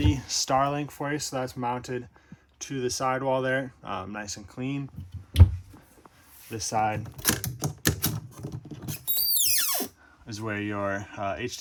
Starlink for you, so that's mounted to the sidewall there, nice and clean. This side is where your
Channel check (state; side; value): identical; both; correlation 1.00